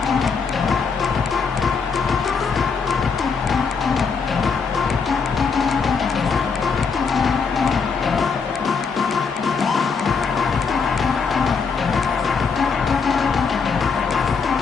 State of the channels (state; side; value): quieter; right; 5.4 dB